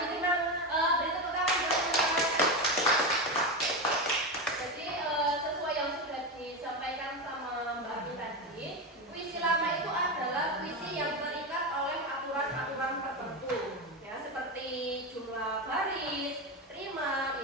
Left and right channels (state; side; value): normal; both; correlation 0.15